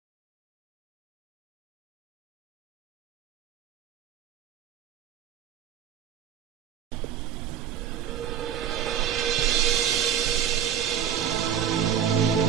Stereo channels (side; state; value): left; quieter; 9.3 dB